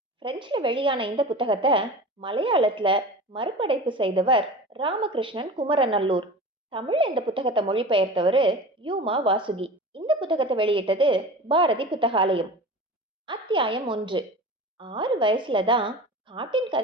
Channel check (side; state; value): both; normal; correlation 0.34